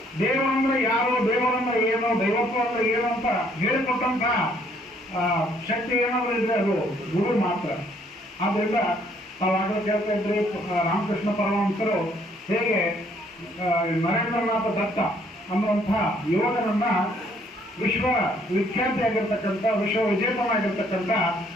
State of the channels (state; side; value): normal; both; correlation 0.65